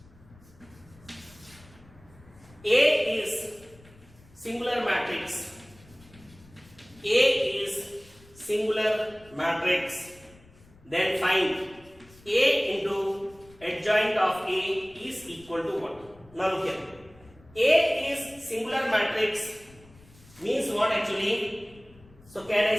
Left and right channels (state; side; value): noise; left; rumble, 25 dB below the sound